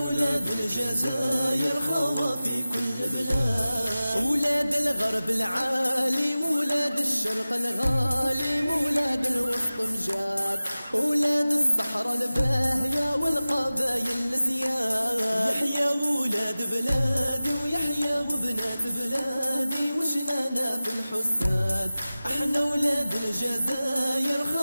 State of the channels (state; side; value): inverted; both; correlation -0.97